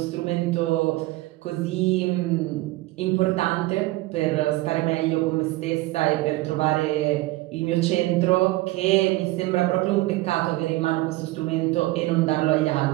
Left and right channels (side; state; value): left; quieter; 19.2 dB